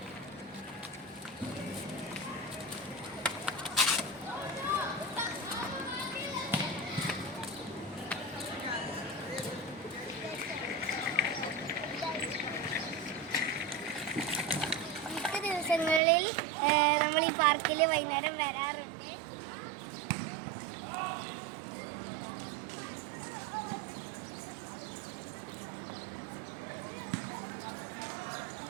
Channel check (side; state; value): left; drops out; at 16.0 s